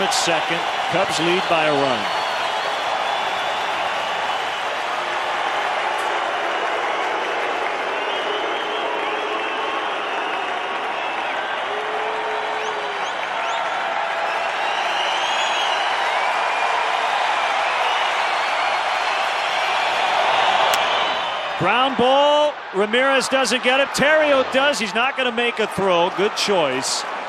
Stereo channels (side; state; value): both; identical; correlation 1.00